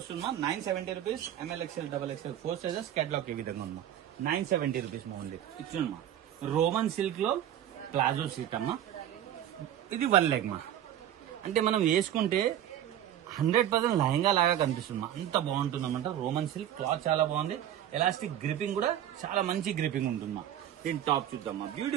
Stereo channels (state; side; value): quieter; left; 11.1 dB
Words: మా, 970 rupees. ML XL XXL 4 sizes. Catalogue ఈ విధంగా ఉందా, 970 రూపీస్ మా ఉంది. ఇచ్చింది మా, రోమన్ సిల్క్ లో ప్లాజో సీట్ అమ్మా. ఇది 1 లెగ్ మా, అంటే మనం వేసుకుంటే 100% లెహంగా లాగా కనిపిస్తుంది మా, అంత బాగుంటుంది అన్నమాట. రోమన్ సిల్క్ క్లాత్ చాలా బాగుంది. ఎలాస్టిక్ గ్రిపింగ్ కూడా చాలా మంచి గ్రిపింగ్ ఉంటుంది మా. దీని టాప్ చూద్దామా,